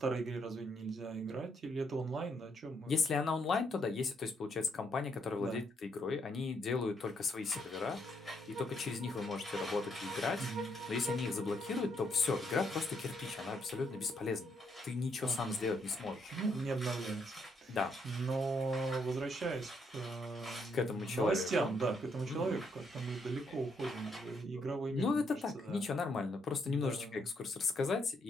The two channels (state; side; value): normal; both; correlation 0.74